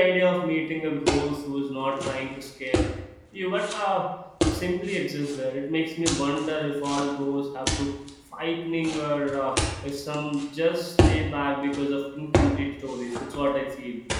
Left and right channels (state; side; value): identical; both; correlation 1.00